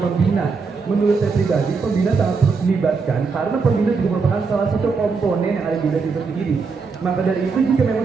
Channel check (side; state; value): left; quieter; 4.8 dB